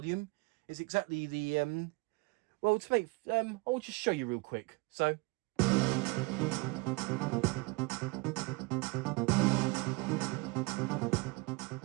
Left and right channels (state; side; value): quieter; left; 26.3 dB